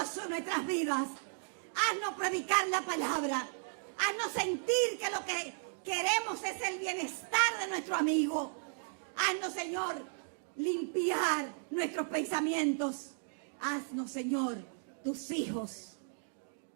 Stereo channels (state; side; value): silent; left; digital silence